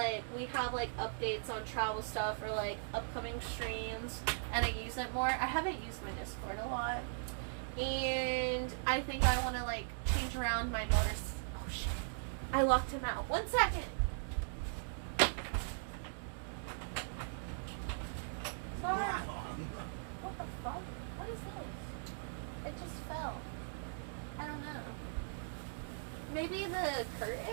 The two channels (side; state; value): left; silent; digital silence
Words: we have like updates on travel stuff or like upcoming streams, and I use it more. I haven't used my Discord a lot, and I think I want to like change around my motors. Oh shit, I locked him out. 1 second. Sorry. What the fuck? What is this? It just fell. I don't know. Maybe the